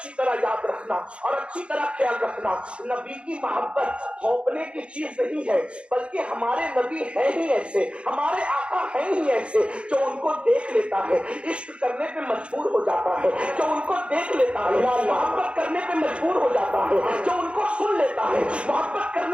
طرح یاد رکھنا اور اچھی طرح خیال رکھنا، نبی کی محبت تھوپنے کی چیز نہیں ہے، بلکہ ہمارے نبی ہیں ہی ایسے، ہمارے آقا ہیں ہی ایسے جو ان کو دیکھ لیتا ہے عشق کرنے پہ مجبور ہو جاتا ہے، جو ان کو دیکھ لیتا ہے محبت کرنے پہ مجبور ہو جاتا ہے، جو ان کو سن لیتا ہے محبت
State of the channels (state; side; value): late; left; 0.058 ms